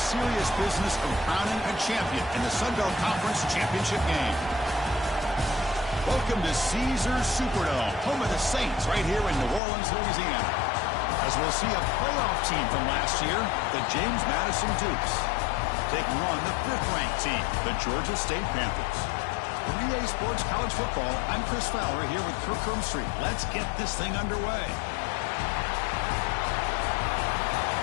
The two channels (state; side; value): drops out; right; at 9.6 s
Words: business of crowning a champion in the Sun Belt Conference Championship game. Welcome to Caesars Superdome, home of the Saints, right here in New Orleans, Louisiana. As we'll see a playoff team from last year, the James Madison Dukes, taking on the 5th-ranked team, the Georgia State Panthers. For EA Sports College Football, I'm Chris Fowler here with Kirk Street. Let's get this thing underway.